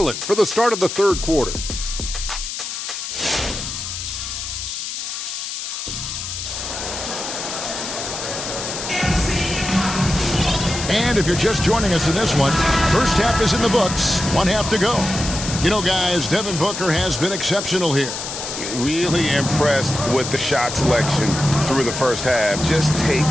for the start of the third quarter. And if you're just joining us in this one, first half is in the books. 1 half to go. You know, guys, Devin Booker has been exceptional here. Really impressed with the shot selection through the first half, just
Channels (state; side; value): noise; left; hiss, 6 dB below the sound